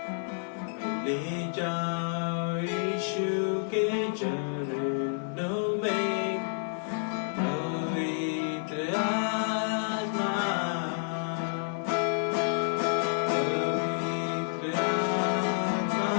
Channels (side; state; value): right; silent; 58 dB below the other